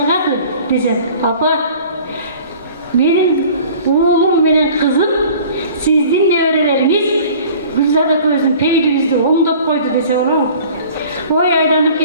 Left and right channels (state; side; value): inverted; both; correlation -0.47